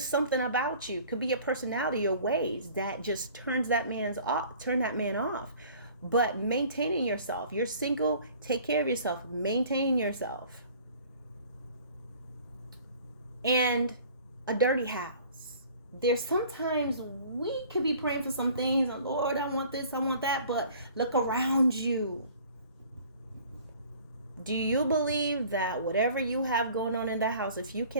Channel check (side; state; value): both; inverted; correlation -0.50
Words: something about you. Could be your personality, your ways that just turn that man off. But maintaining yourself. You're single, take care of yourself. Maintain yourself. And a dirty house. There's sometimes we could be praying for some things, and Lord, I want this, I want that, but look around you. Do you believe that whatever you have going on in that house, if you